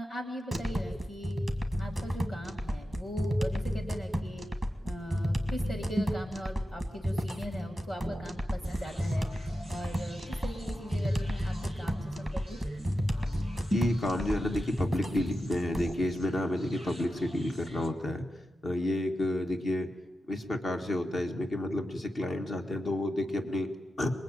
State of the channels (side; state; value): both; normal; correlation 0.90